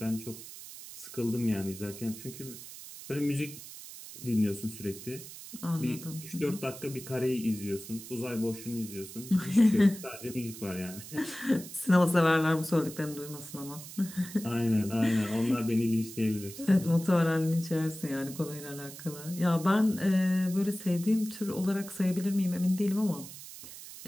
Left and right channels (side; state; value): right; noise; hiss, 14 dB below the sound